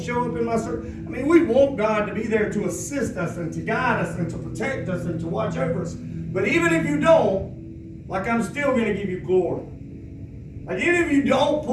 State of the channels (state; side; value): identical; both; correlation 1.00